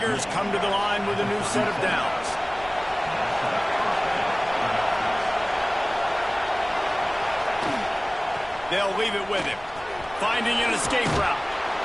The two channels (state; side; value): noise; left; rumble, 21 dB below the sound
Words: come to the line with a new set of downs. They'll leave it with him. Finding an escape route.